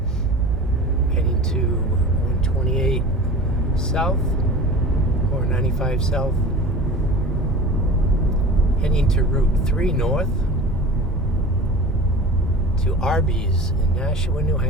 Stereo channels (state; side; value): normal; both; correlation 0.36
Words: heading to 128 South, or 95 South. Heading to Route 3 North, to Arby's in Nashua, New